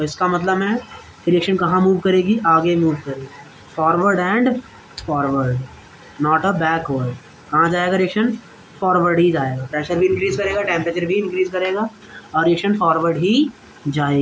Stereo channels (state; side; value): identical; both; correlation 1.00